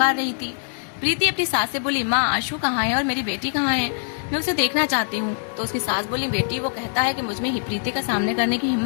रही थी। प्रीति अपनी सास से बोली, माँ आशु कहाँ है और मेरी बेटी कहाँ है, मैं उसे देखना चाहती हूँ। तो उसकी सास बोली, बेटी वो कहता है कि मुझ में ही प्रीति का सामने करने की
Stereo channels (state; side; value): silent; right; digital silence